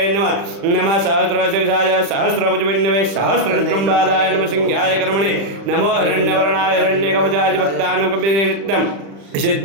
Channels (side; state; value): left; late; 35 ms